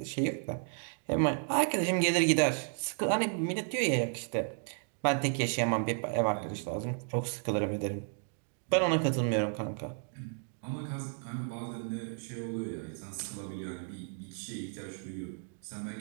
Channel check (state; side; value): silent; left; 56 dB below the other